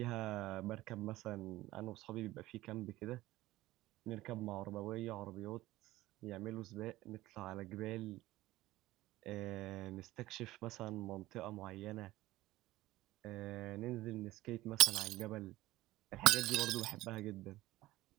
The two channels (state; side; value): quieter; left; 17.2 dB